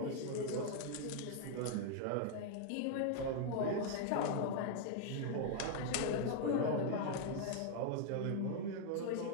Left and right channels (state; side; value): different; both; correlation 0.00